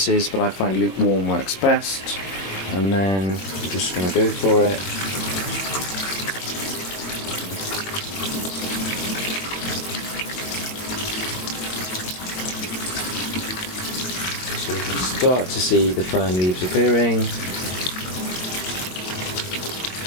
is, but I find lukewarm works best. And then I'm just going to go for it. So you can start to see the fern leaves appearing.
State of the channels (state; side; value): late; right; 22 ms